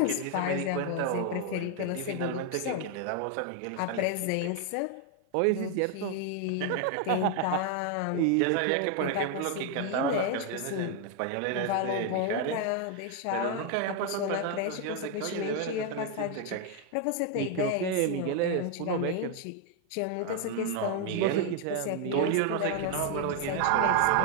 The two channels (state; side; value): different; both; correlation 0.01